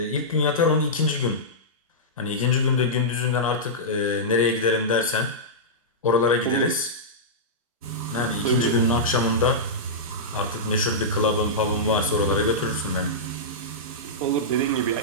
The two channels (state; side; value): normal; both; correlation -0.13